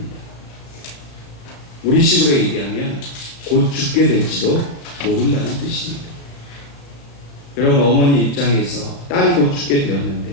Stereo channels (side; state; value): right; late; 35 ms